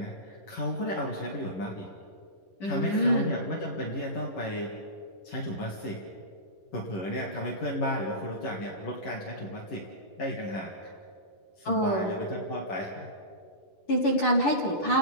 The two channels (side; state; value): right; late; 11 ms